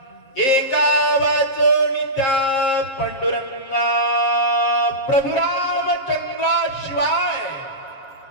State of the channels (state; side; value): late; right; 7.5 ms